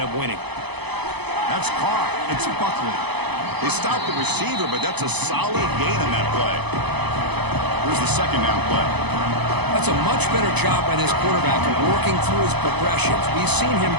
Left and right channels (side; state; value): left; late; 0.98 ms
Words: winning. That's caught. It's Buckley. They stopped the receiver, but that's a solid gain on that play. Here's the second down play. That's a much better job by this quarterback of working through his progressions. We've seen him